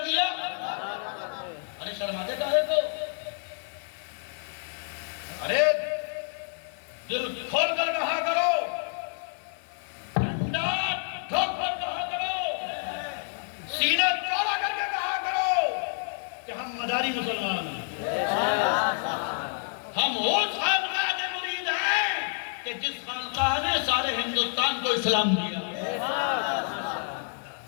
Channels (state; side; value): silent; right; 59 dB below the other